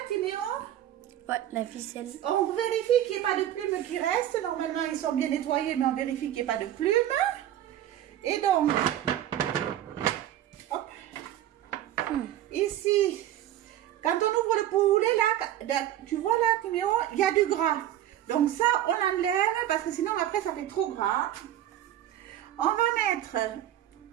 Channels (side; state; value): left; quieter; 12.3 dB